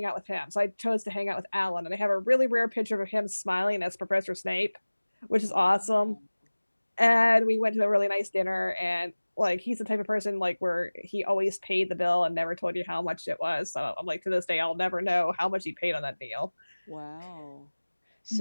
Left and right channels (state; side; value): inverted; both; correlation -1.00